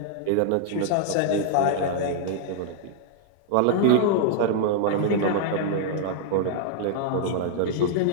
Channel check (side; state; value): both; different; correlation -0.01